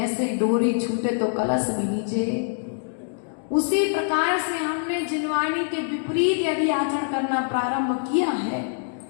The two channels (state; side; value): silent; right; digital silence